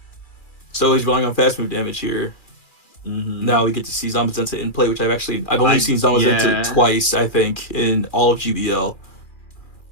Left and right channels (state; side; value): late; right; 2.4 ms